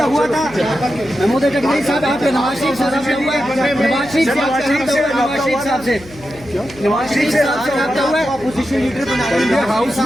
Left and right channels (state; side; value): noise; left; hum, 20 dB below the sound